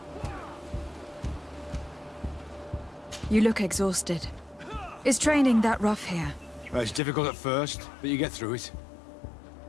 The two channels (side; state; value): right; drops out; at 7.0 s